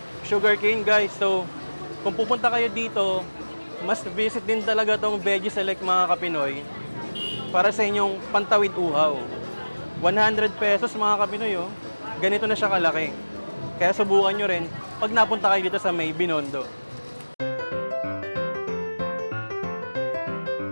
Sugarcane, guys. So, kung pupunta kayo dito, must visit din talaga tong Veggie Select mga Kapinoy para sa inyong pantawid uhaw. 100 pesos mga Kapinoy, oh. Ganito na siya kalaki. Kaya subukan nyo rin pag napunta kayo dito sa may Binondo.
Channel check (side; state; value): both; inverted; correlation -1.00